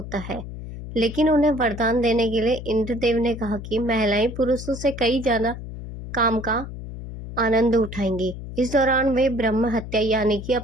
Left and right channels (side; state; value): left; noise; hum, 10 dB below the sound